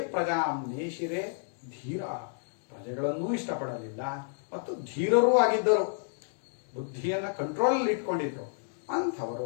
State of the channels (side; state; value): right; silent; digital silence